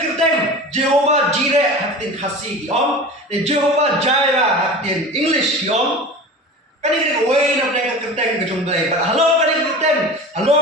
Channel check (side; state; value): both; normal; correlation 0.34